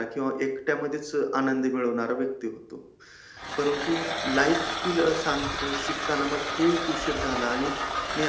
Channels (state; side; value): identical; both; correlation 1.00